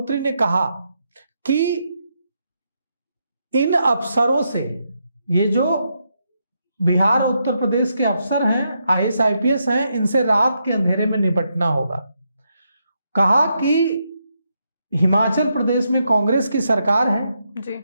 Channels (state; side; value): inverted; both; correlation -0.81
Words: ने कहा कि इन अफसरों से, ये जो बिहार और उत्तर प्रदेश के अफसर हैं, आईएएस आईपीएस हैं, इनसे रात के अंधेरे में निपटना होगा। कहा कि हिमाचल प्रदेश में कांग्रेस की सरकार है जी,